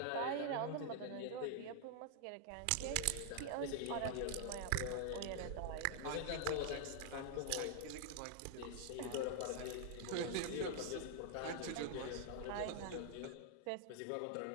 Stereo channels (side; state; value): both; different; correlation -0.01